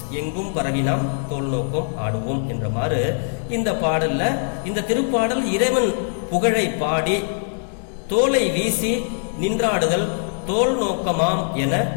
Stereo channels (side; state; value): right; silent; digital silence